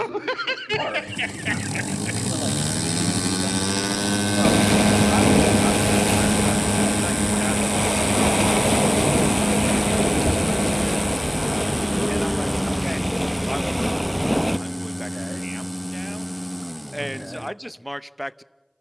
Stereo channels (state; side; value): identical; both; correlation 1.00